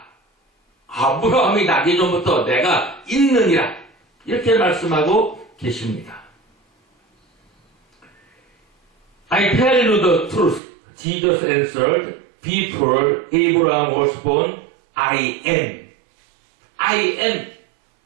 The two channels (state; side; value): drops out; left; at 10.6 s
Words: 아브라함이 나기 전부터 내가 있느니라. 이렇게 말씀하고 계십니다. I tell you the truth. Jesus answered, before Abraham was born, I am. I am.